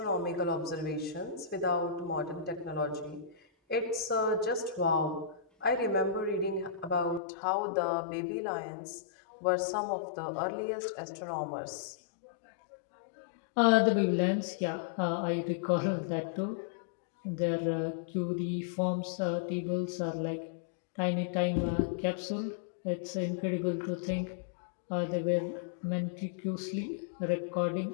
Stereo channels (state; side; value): drops out; right; at 7.2 s